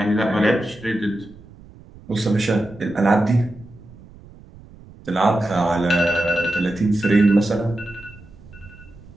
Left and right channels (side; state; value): right; noise; rumble, 21 dB below the sound